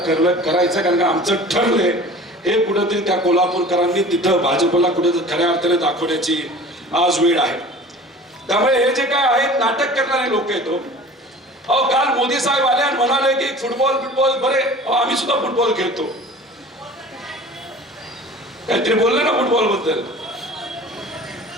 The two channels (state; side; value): normal; both; correlation 0.42